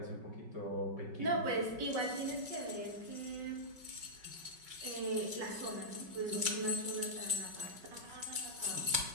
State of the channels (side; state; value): left; late; 5.3 ms